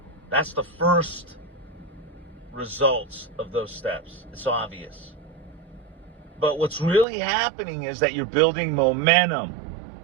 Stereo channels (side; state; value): left; drops out; at 7.1 s